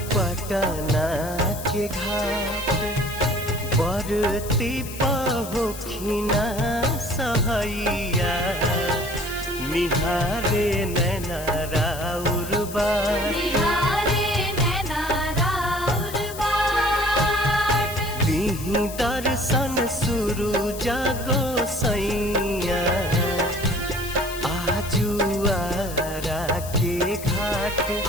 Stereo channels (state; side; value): noise; left; hiss, 12 dB below the sound